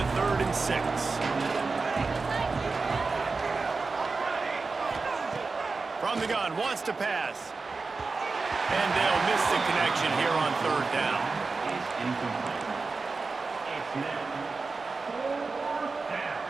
3rd and 6. From the gun, wants to pass. And they'll miss the connection here on 3rd down.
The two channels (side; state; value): left; quieter; 4.1 dB